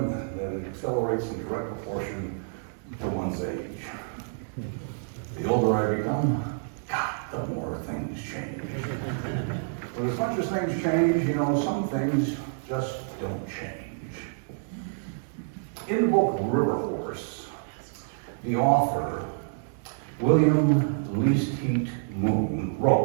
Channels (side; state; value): left; silent; 59 dB below the other